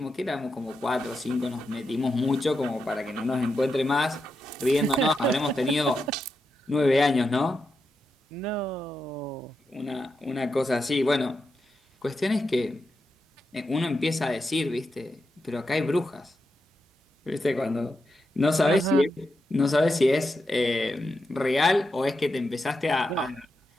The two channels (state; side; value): normal; both; correlation 0.86